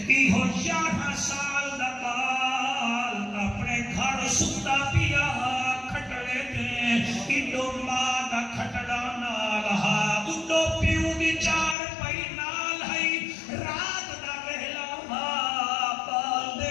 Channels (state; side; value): drops out; right; at 11.8 s